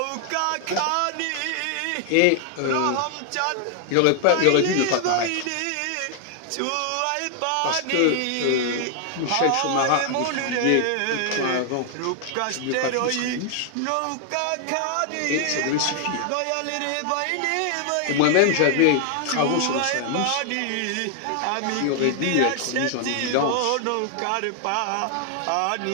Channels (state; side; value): different; both; correlation 0.00